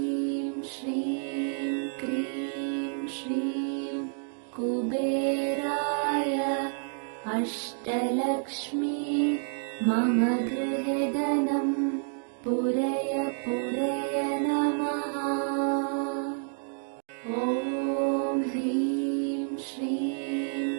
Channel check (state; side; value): silent; left; 56 dB below the other